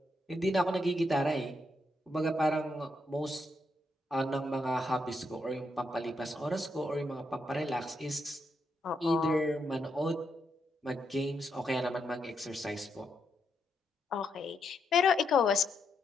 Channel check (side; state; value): both; normal; correlation 0.80